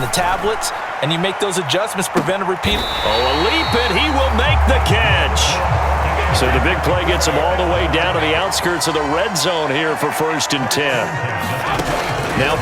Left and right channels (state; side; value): identical; both; correlation 1.00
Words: the tablets, and you make those adjustments, prevent a repeat. Oh, a leap, and he will make the catch. So the big play gets him all the way down to the outskirts of the red zone here for 1st and 10. Now